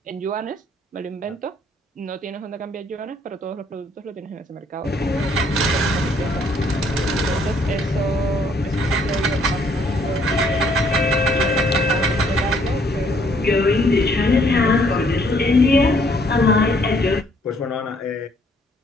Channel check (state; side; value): normal; both; correlation 0.65